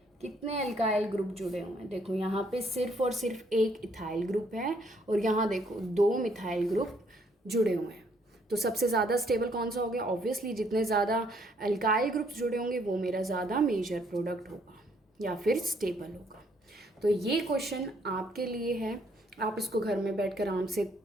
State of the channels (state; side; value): normal; both; correlation 0.68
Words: कितने एल्काइल ग्रुप जुड़े हुए हैं, देखो यहाँ पे सिर्फ और सिर्फ एक इथाइल ग्रुप है और यहाँ देखो 2 मिथाइल ग्रुप जुड़े हुए हैं। तो सबसे ज़्यादा स्टेबल कौन सा हो गया, ऑब्वियसली जितने ज़्यादा एल्काइल ग्रुप्स जुड़े होंगे वो मेरा ज़्यादा मेजर प्रोडक्ट होगा या फिर स्टेबल होगा। तो ये क्वेश्चन आपके लिए है, आप इसको घर में बैठकर आराम से